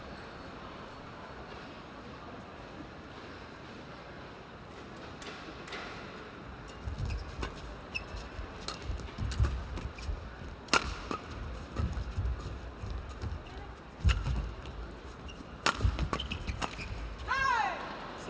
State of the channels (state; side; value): identical; both; correlation 1.00